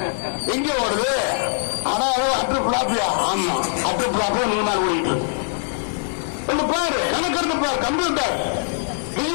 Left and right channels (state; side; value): silent; right; 57 dB below the other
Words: எங்க ஓடுது? ஆனா அட்டு பிளாப்பியா? ஆமா, அட்டு பிளாப்பியா 100 நாள் ஓடிட்டு பாரு. கணக்கெடுத்து பாரு. கம்ப்யூட்டர்